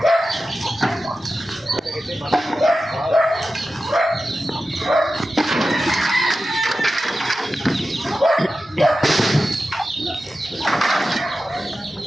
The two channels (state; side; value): normal; both; correlation 0.93